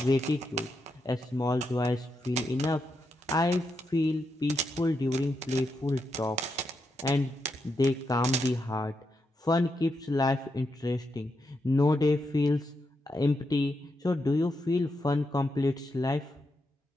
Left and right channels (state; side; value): normal; both; correlation 0.83